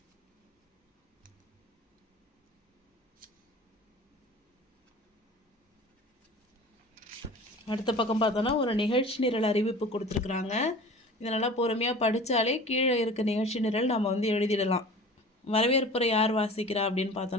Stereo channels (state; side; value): normal; both; correlation 0.40